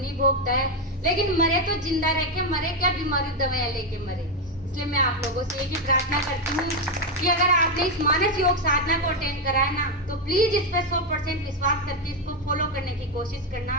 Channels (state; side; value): normal; both; correlation 0.05